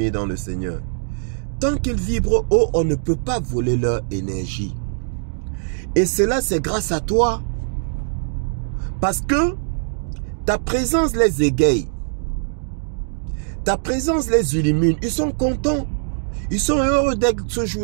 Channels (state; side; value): silent; left; digital silence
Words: dans le Seigneur. Tant qu'ils vibrent haut, on ne peut pas voler leur énergie. Et cela, c'est grâce à toi. Parce que ta présence les égaye. Ta présence les illumine. Ils sont contents. Ils sont heureux d'être ce